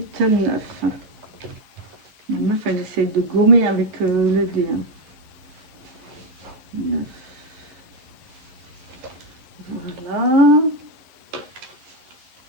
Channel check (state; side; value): late; left; 11 ms